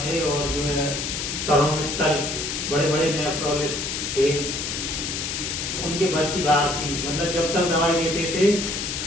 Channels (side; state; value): left; noise; hiss, 3 dB below the sound